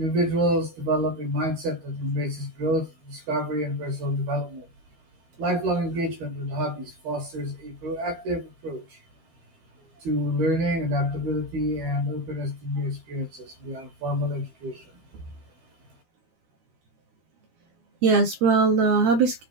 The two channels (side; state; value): left; late; 12 ms